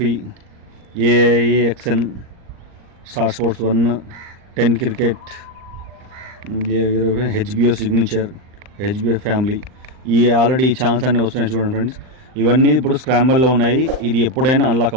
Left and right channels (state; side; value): late; left; 39 ms